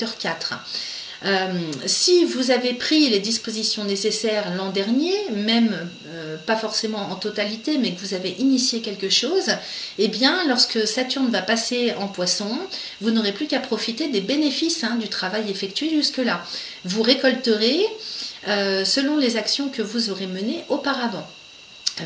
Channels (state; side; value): identical; both; correlation 1.00